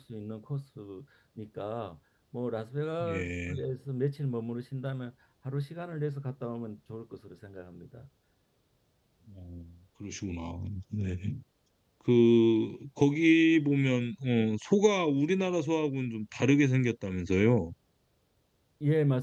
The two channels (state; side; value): identical; both; correlation 1.00